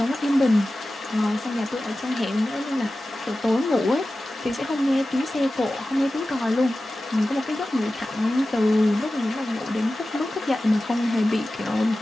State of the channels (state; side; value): normal; both; correlation 0.95